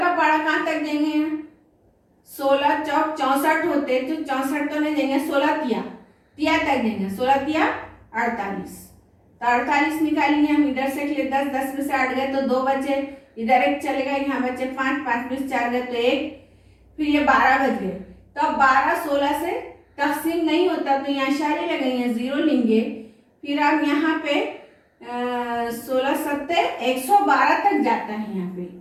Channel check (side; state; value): both; identical; correlation 1.00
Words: पहाड़ा कहाँ तक देंगे, 16 चौक 64 होते, तो 64 तो नहीं देंगे, 16 तिया तक देंगे, 16 तिया 48। तो 48 निकालेंगे हम, इधर से 10, 10 में से 8 गए, तो 2 बचे, इधर एक चलेगा, यहाँ बचे 5, 5 में से 4 गए, तो 1, फिर ये 12 बच गए। तो अब 12 16 से तकसीम नहीं होता, तो यहाँ इशारे लगाएंगे, 0 लेंगे। फिर अब यहाँ पे 16 7 112 तक जाता है। यहाँ पे